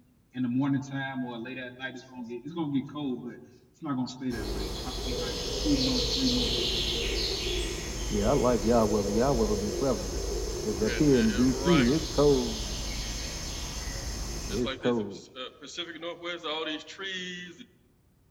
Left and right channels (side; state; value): both; identical; correlation 1.00